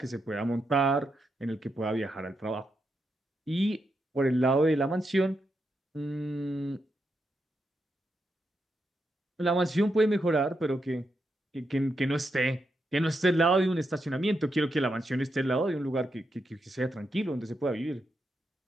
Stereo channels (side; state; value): both; normal; correlation 0.84